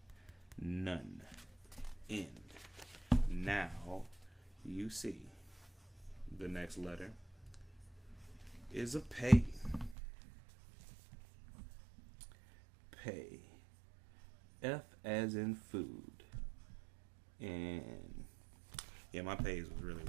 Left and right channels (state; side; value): drops out; left; at 10.0 s